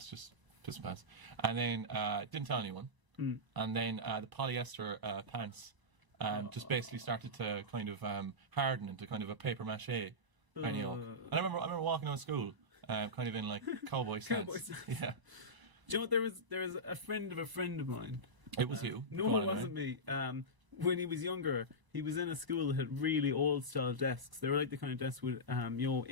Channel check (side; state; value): left; late; 1.0 ms